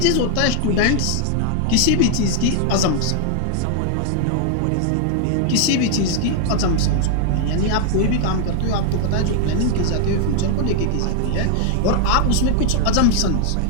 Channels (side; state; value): both; different; correlation 0.00